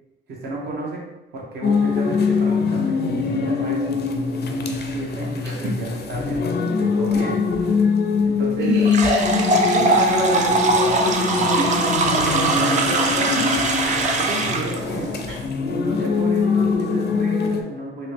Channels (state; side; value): normal; both; correlation 0.42